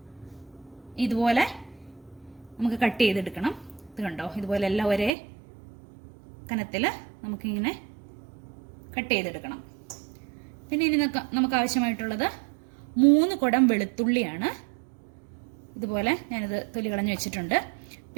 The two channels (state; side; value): drops out; left; at 5.1 s